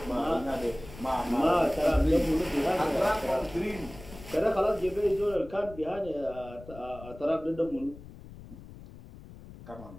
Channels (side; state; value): left; noise; rumble, 17 dB below the sound